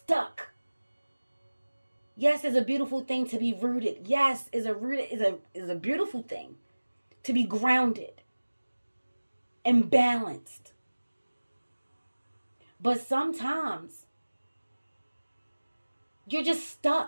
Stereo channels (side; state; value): both; inverted; correlation -1.00